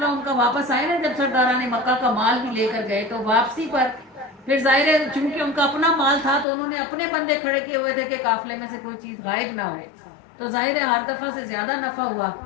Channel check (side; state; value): right; drops out; at 6.5 s